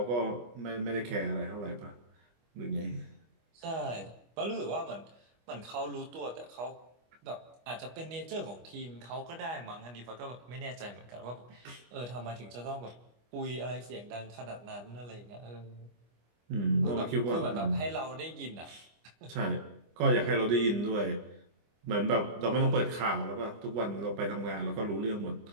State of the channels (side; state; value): left; late; 25 ms